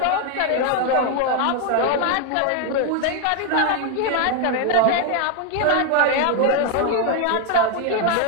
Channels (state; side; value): different; both; correlation 0.01